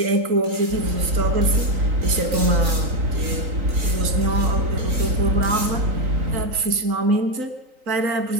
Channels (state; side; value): late; left; 3.9 ms